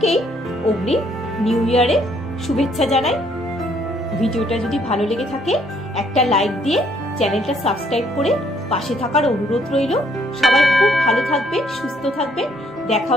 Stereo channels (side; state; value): both; normal; correlation 0.67